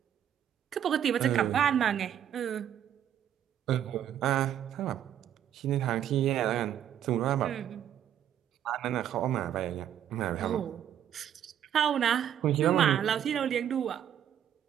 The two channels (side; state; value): left; quieter; 10.0 dB